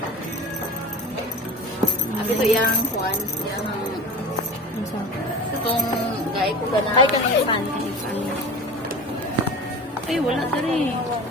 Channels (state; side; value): normal; both; correlation 0.34